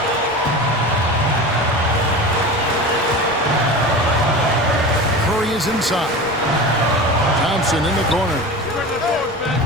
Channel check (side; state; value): left; noise; rumble, 22 dB below the sound